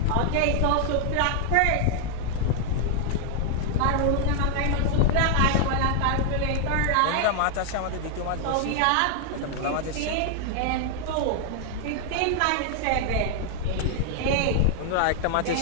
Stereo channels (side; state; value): both; different; correlation 0.00